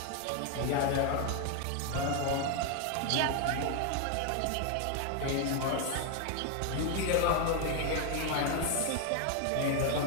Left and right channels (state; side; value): different; both; correlation 0.00